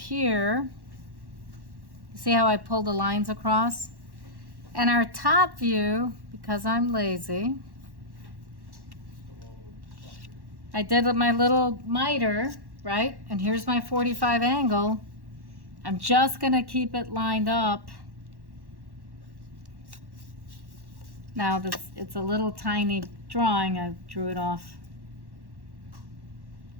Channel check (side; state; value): left; late; 1.1 ms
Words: See how I pulled the lines across? And our top view, because I'm lazy, I did with my little miter, right? And here's my 45 angle. I'm just gonna keep it lined up. Now this, it's a little tiny drawing, I drew it off.